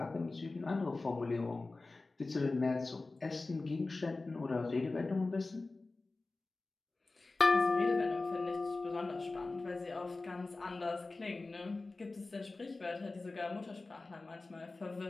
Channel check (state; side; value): quieter; right; 3.4 dB